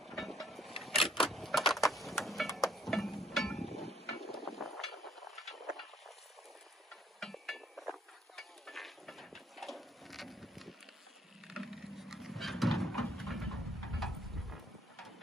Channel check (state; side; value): normal; both; correlation 0.63